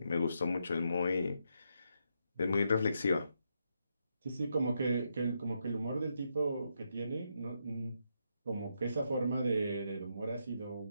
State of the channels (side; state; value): both; inverted; correlation -0.81